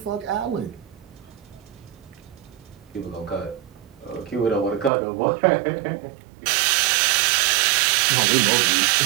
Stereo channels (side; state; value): left; drops out; at 4.9 s